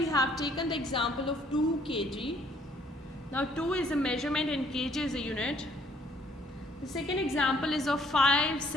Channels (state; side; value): normal; both; correlation 0.63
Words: have taken the example of 2 kg. Now 2 is a measurement and kg is a unit. The second example is of 5